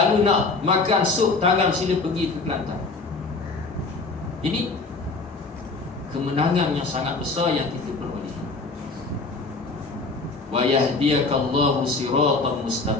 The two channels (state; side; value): quieter; right; 3.8 dB